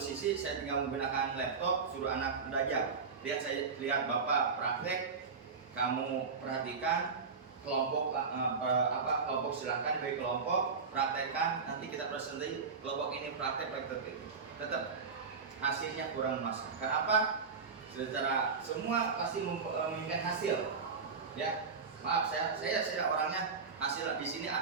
saya tinggal menggunakan laptop, suruh anak belajar. Lihat bapak praktek, kamu perhatikan kelompok kelompok silahkan bagi kelompok praktekkan, nanti kita presentasi kelompok ini praktek. Tetap hasilnya kurang masuk. Kenapa? Secara semua pasti menginginkan hasil. Ya, maaf saya orangnya hasil di sini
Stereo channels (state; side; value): quieter; left; 5.2 dB